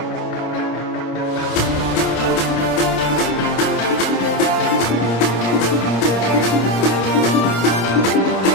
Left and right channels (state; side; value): late; right; 26 ms